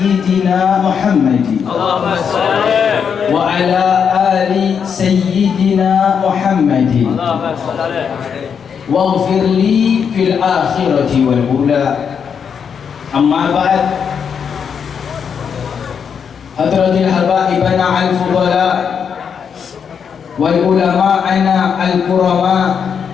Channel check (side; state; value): right; quieter; 7.0 dB